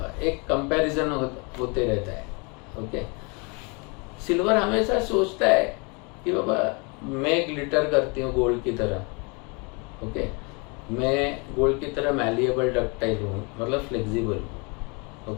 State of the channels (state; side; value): quieter; right; 31.4 dB